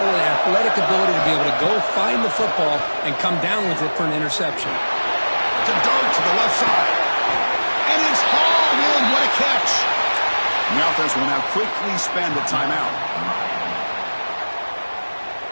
an athletic ability to be able to go find the football and come down with it for an interception. To dart to the left side. And it's hauled in. What a catch. And the offense will now quickly spend a timeout.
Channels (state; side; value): inverted; both; correlation -1.00